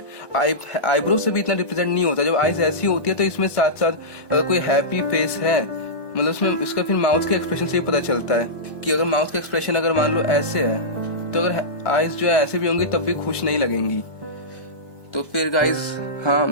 आईब्रोज से भी इतना रिप्रेजेंट नहीं होता, जब आईज ऐसी होती है तो इसमें साथ साथ अगर कोई हैप्पी फेस है, मतलब उसमें इसका फिर माउथ के एक्सप्रेशन से ही पता चलता है कि अगर माउथ का एक्सप्रेशन अगर मान लो ऐसे है, तो अगर आईज जो है ऐसे भी होंगी तब भी खुश नहीं लगेंगी। तो फिर गाइज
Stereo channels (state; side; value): late; right; 1.2 ms